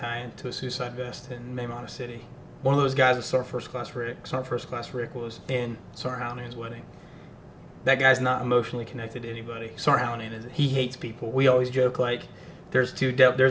to a suicide vest in Maymana City. One of those guys was Sergeant First Class Rick. Sergeant First Class Rick was in Sergeant Hallinan's wedding. That guy's not emotionally connected to anybody. Sergeant Hallinan is. He hates people. We always joke like, there's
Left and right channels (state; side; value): identical; both; correlation 1.00